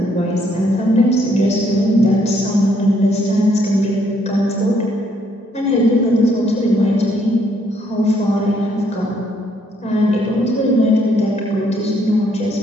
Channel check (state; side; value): normal; both; correlation 0.69